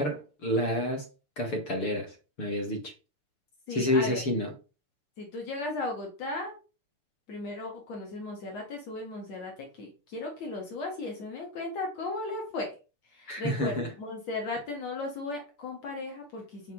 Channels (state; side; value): late; right; 6.8 ms